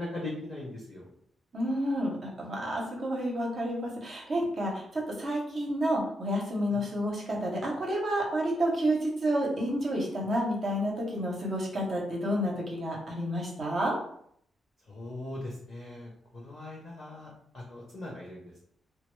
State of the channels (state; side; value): normal; both; correlation 0.80